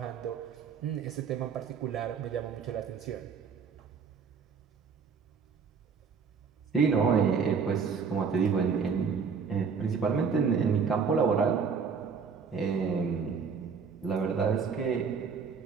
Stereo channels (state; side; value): quieter; left; 5.9 dB